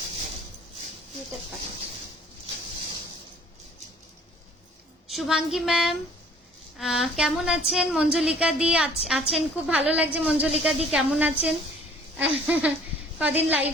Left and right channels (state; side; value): normal; both; correlation 0.54